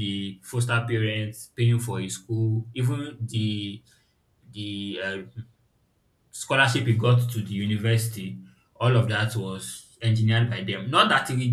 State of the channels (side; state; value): both; identical; correlation 1.00